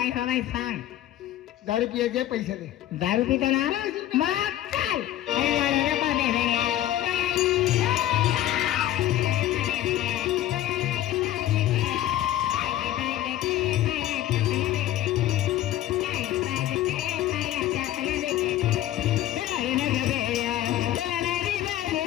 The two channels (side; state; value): right; quieter; 13.4 dB